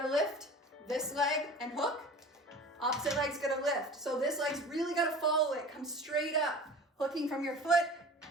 lift this leg and hook. Opposite leg's gonna lift. So this leg's really gotta follow it. Come straight up, hooking from your foot,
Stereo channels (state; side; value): normal; both; correlation 0.39